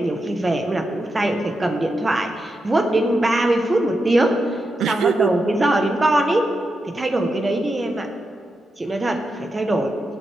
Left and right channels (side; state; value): both; normal; correlation 0.87